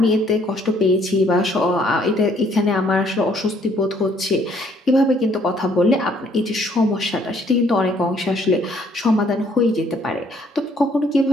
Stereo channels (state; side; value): normal; both; correlation 0.64